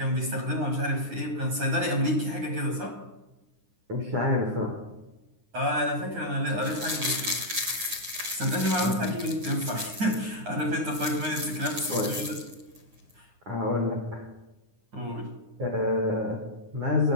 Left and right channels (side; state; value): left; late; 9.7 ms